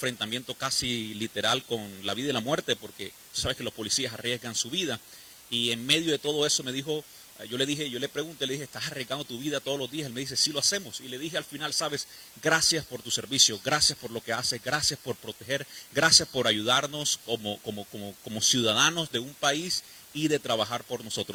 casi literal con la vida y la muerte, porque tú sabes que los policías arriesgan su vida, y en medio de todo eso me dijo, yo le pregunté, le dije, ¿estás arriesgando tu vida todos los días? Él me dice, sí lo hacemos. Y le dije al final, sabes, gracias por tu servicio, gracias por lo que haces, gracias por proteger, gracias por ayudarnos como ciudadanos de un país y de trabajar por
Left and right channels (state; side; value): identical; both; correlation 1.00